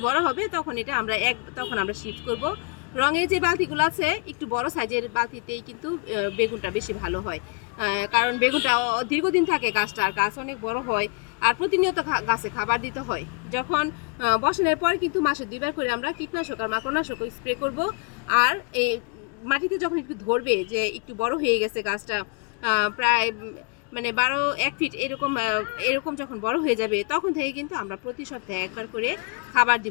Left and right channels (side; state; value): right; quieter; 33.5 dB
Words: বড় হবে, তখন এটা আমরা তখন আমরা শিফট করব। রঙের যে বালতিগুলো আছে, একটু বড় সাইজের বালতিতেই কিন্তু বেগুনটা বেশি ভালো হয়। কারণ বেগুনটা দীর্ঘদিন থাকে গাছটা, আর গাছ অনেক বড় হয়, আর প্রতিনিয়ত গাছে খাবার দিতে হয়। যখন বসানোর পর কিন্তু মাসে 2বার করে আমরা কীটনাশক আর মাকড়নাশক স্প্রে করব। আর এই মাটিতে যখন একটু ধরবে যে একটু বড় হয়ে গেছে গাছটা, প্রায় মানে 1 ফিট এরকম এরকম যখন বড় হয়ে যাবে, তখন থেকে কিন্তু আমরা প্রতি সপ্তাহে 1বার করে খাবার